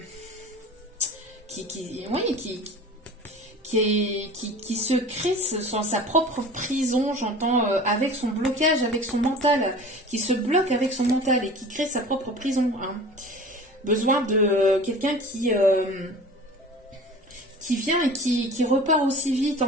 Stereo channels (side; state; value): both; normal; correlation 0.39